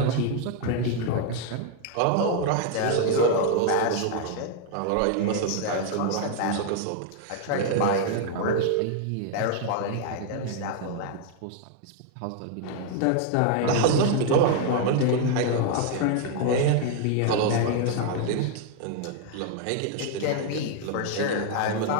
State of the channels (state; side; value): different; both; correlation 0.00